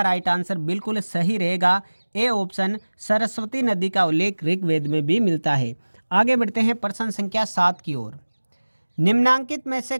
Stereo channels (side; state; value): both; inverted; correlation -1.00